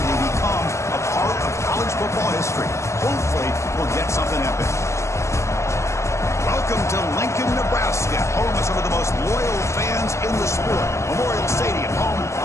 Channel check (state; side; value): late; right; 0.14 ms